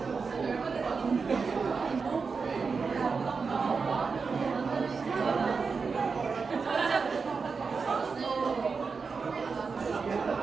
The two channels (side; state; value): left; quieter; 5.0 dB